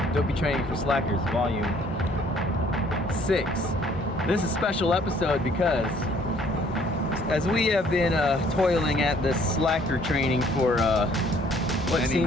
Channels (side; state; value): both; normal; correlation 0.60